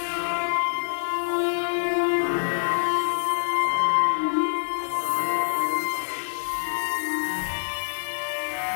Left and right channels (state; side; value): silent; right; digital silence